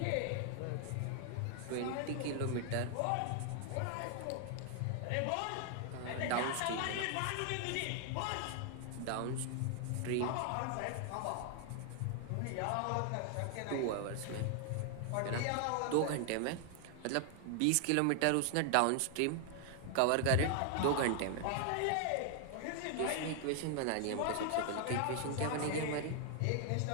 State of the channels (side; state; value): both; different; correlation 0.00